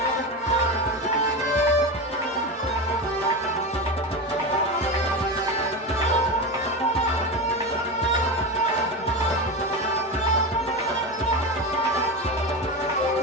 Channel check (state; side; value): normal; both; correlation 0.20